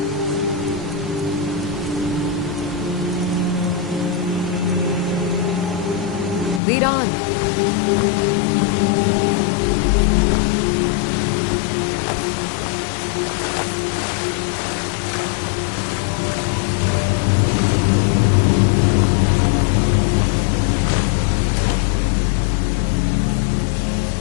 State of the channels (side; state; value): right; drops out; at 6.6 s